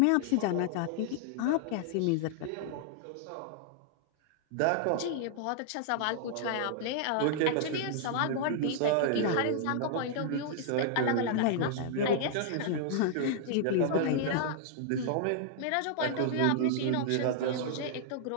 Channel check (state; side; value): different; both; correlation -0.01